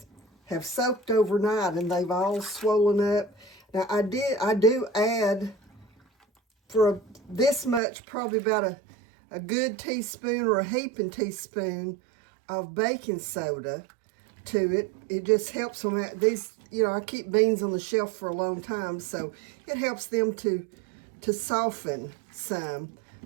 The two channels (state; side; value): drops out; left; at 7.8 s